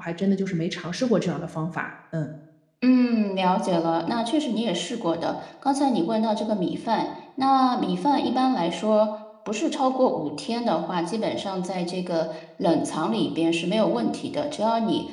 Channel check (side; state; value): both; identical; correlation 1.00